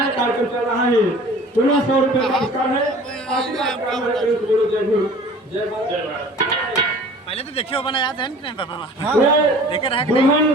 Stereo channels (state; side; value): normal; both; correlation 0.46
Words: कार्यक्रम चल रहा है, 1600 रुपए का पुरस्कार है। पहले तो देखिए बना याद है नहीं पापा? देखे रहा दुल्हन